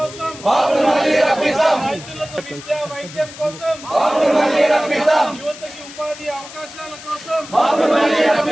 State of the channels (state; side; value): noise; left; hiss, 16 dB below the sound